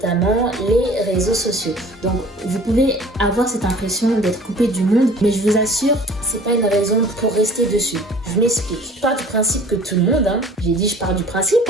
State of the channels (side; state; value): both; normal; correlation 0.48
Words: les réseaux sociaux. Donc vous pouvez avoir cette impression d'être coupé du monde, mais je vous assure, c'est pas une raison pour rester dessus. Je m'explique. Je pars du principe que tout le monde, je pars du principe